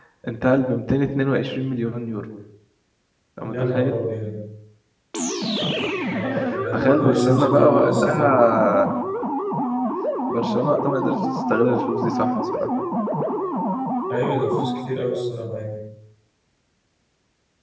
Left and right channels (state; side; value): identical; both; correlation 1.00